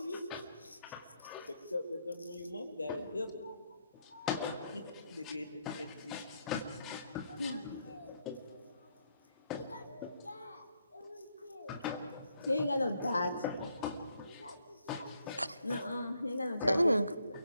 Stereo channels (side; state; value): both; inverted; correlation -0.75